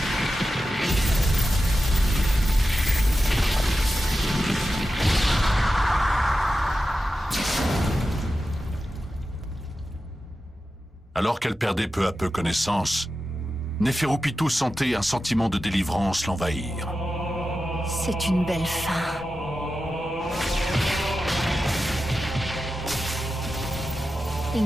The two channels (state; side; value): normal; both; correlation 0.92